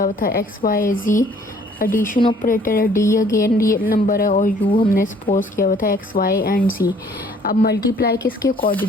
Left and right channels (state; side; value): normal; both; correlation 0.58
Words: हुआ था एक्स वाई जी एडिशन ऑपरेटर है, डी अगेन रियल नंबर है और यू हमने सपोज किया हुआ था एक्स वाई एंड सी। अब मल्टीप्लाई किसके